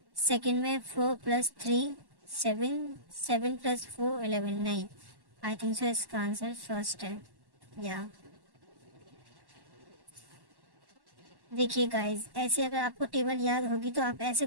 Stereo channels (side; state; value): left; late; 1.1 ms